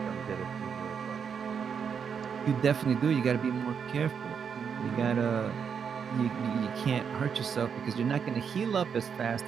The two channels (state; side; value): quieter; left; 6.9 dB